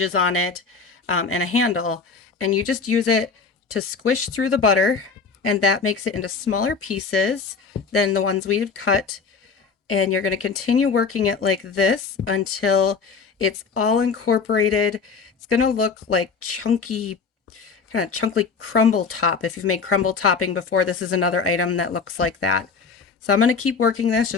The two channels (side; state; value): right; quieter; 5.2 dB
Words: on it, and a handle. And you just use it to squish through the butter, and that makes it into smaller pieces than the ones we've cut. And you're going to continue working it like this until it's all incorporated. It's going to look like chunky, kind of chunky crumble top. If you've made crumble topping before, this is another item that looks like that. So I'm going to keep working this,